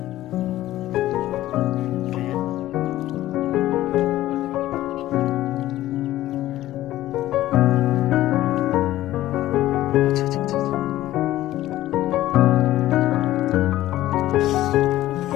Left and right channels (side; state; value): right; quieter; 14.8 dB